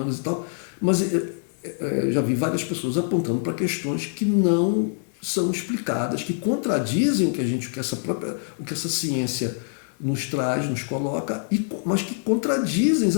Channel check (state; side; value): silent; right; digital silence